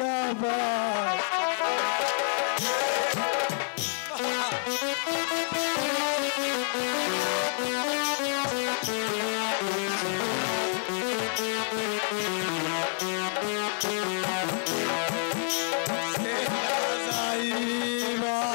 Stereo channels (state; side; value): silent; right; 59 dB below the other